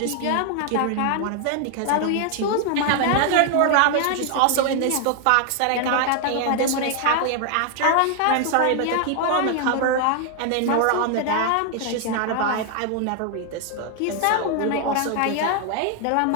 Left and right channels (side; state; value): both; different; correlation 0.00